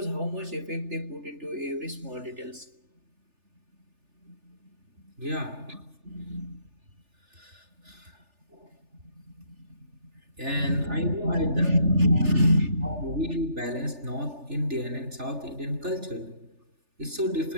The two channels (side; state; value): left; late; 3.4 ms